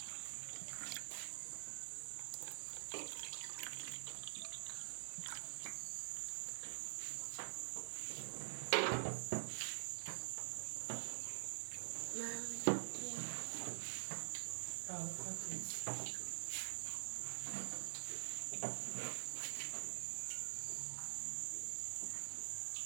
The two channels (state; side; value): silent; left; digital silence